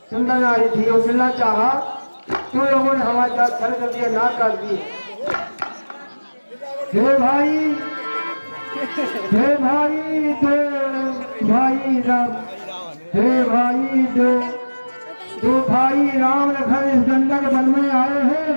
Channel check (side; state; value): both; inverted; correlation -1.00